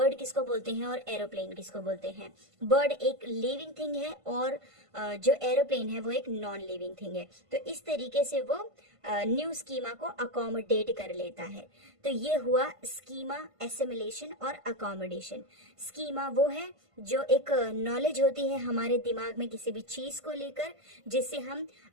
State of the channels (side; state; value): left; late; 1.5 ms